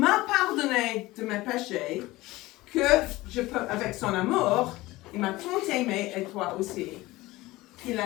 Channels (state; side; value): quieter; right; 19.1 dB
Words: pardonné de mes péchés, que je peux, avec son amour, il m'a tant aimé et toi aussi, qu'il